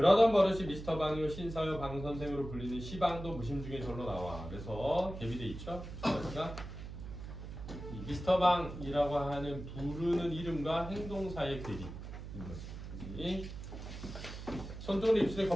버릇이 미스터 방이요 신사요 방 선생으로 불리는 시방도 무심 중에 절로 나와. 그래서 대비돼 있죠. 그러니까 이 미스터 방이라고 하는 부르는 이름과 행동 사이의 괴리인 거지. 손등으로 입술에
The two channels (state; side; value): noise; right; hum, 10 dB below the sound